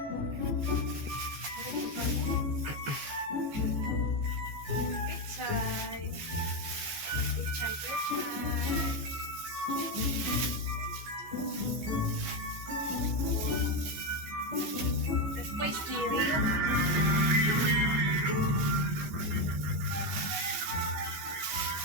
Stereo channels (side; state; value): left; late; 14 ms